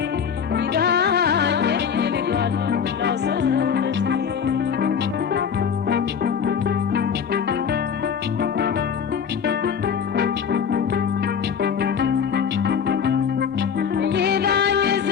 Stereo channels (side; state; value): right; quieter; 7.1 dB